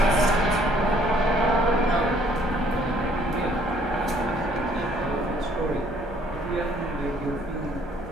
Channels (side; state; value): both; normal; correlation 0.61